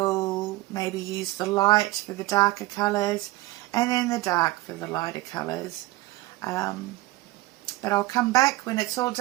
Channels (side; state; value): left; quieter; 18.8 dB